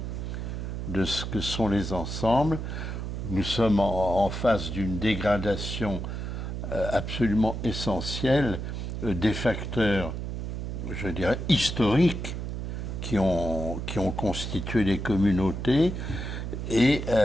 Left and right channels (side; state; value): right; noise; hum, 5 dB below the sound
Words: de ce que sont les ensembles, nous sommes en face d'une dégradation absolument essentielle des facteurs, je dirais, historiques qui ont constitué les communautés. Et